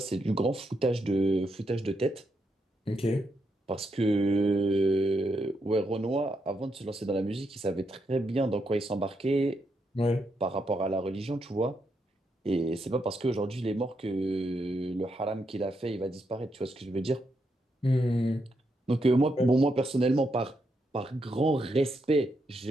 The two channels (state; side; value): normal; both; correlation 0.81